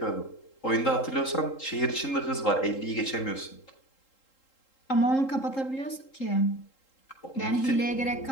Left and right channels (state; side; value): late; right; 3.8 ms